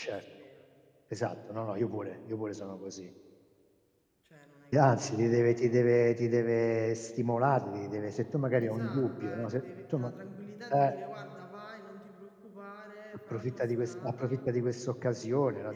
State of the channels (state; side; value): identical; both; correlation 1.00